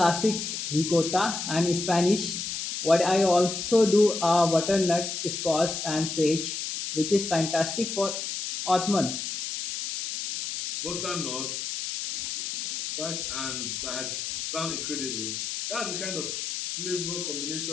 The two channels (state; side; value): noise; left; hiss, 4 dB below the sound